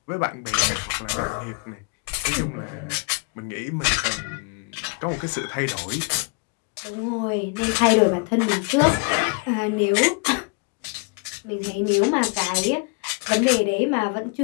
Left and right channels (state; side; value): quieter; right; 32.1 dB